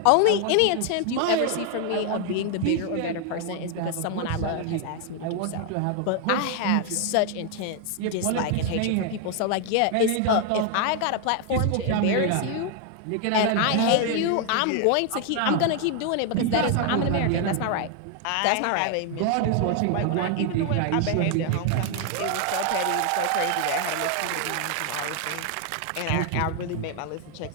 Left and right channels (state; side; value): different; both; correlation 0.00